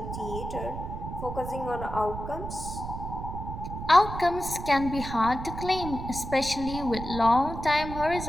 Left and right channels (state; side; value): noise; right; rumble, 7 dB below the sound